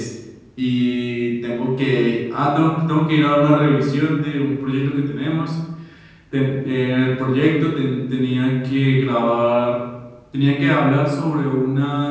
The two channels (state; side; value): identical; both; correlation 1.00